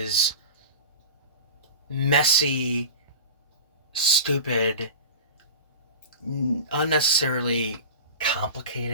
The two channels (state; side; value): inverted; both; correlation -0.33